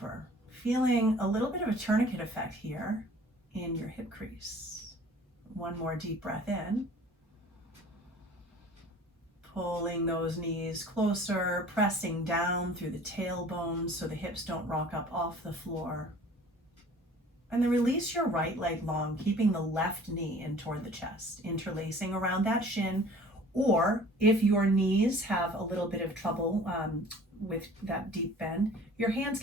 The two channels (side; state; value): both; normal; correlation 0.48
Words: Feeling a little bit of a tourniquet effect here in your hip crease. 1 more deep breath in. Pulling those knees closer, pressing down through the tailbone so the hips don't rock up off the floor. And then release your right leg long, keeping the left knee in toward the chest, interlacing around that shin. Or if your knees have a little bit of trouble with that deep bend, your hands